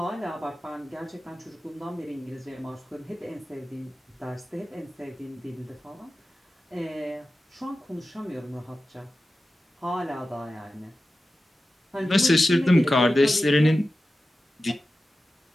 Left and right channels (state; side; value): normal; both; correlation 0.94